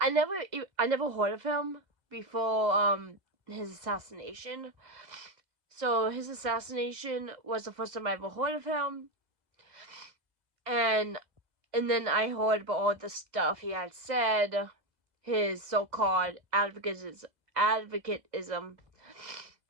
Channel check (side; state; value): left; late; 2.0 ms